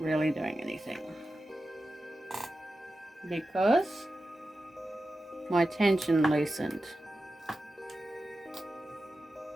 doing anything, because my tension loosened.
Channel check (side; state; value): both; normal; correlation 0.92